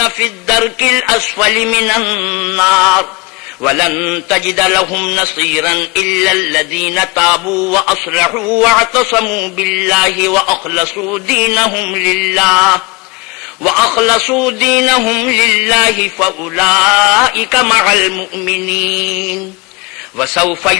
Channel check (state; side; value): quieter; right; 26.5 dB